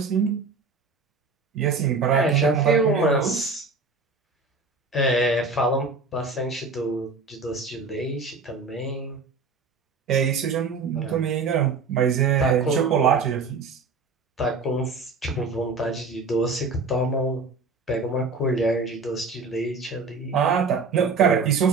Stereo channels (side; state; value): left; quieter; 4.2 dB